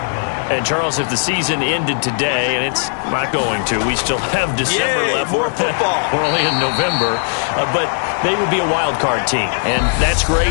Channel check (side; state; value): right; silent; digital silence